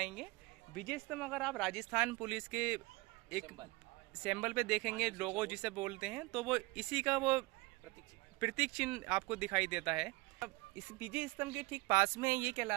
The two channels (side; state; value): left; quieter; 23.2 dB